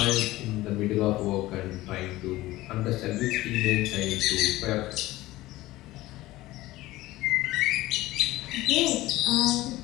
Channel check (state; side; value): quieter; right; 17.5 dB